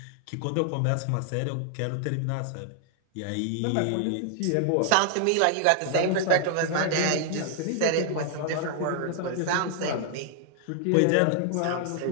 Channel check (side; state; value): both; different; correlation 0.00